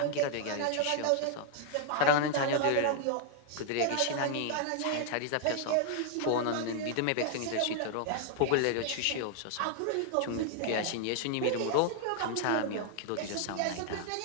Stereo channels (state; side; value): different; both; correlation 0.00